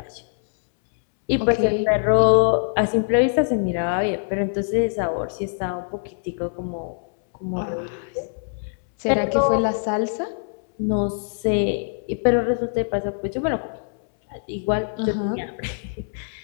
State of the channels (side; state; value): right; silent; 63 dB below the other